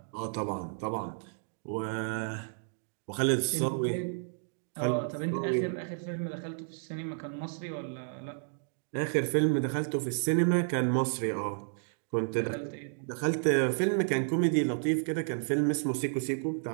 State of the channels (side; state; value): left; silent; digital silence